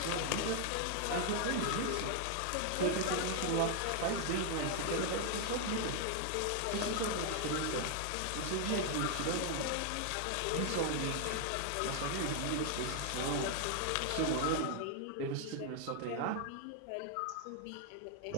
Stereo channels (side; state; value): both; different; correlation 0.00